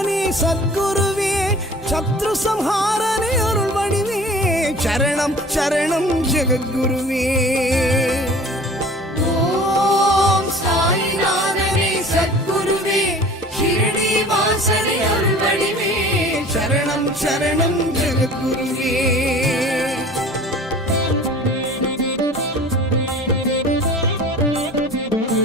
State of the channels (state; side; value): normal; both; correlation 0.44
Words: சத்குருவே சத்ரு சம்ஹாரனே அருள் வடிவே சரணம் சரணம் ஜெகத்குருவே. ஓம் சாயிநாதனே சத்குருவே ஷிரடி வாசனே அருள்வடிவே சரணம் சரணம் ஜெகத்குருவே.